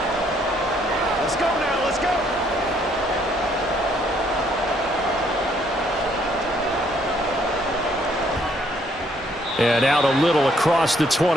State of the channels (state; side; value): normal; both; correlation 0.67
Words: Let's go now, let's go. And out a little across the